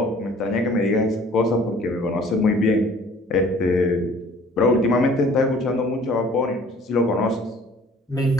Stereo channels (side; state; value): both; normal; correlation 0.52